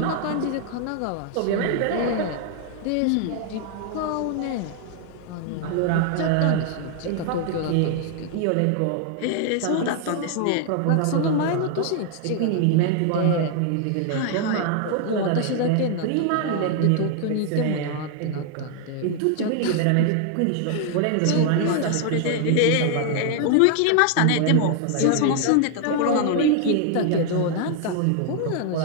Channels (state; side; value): different; both; correlation 0.00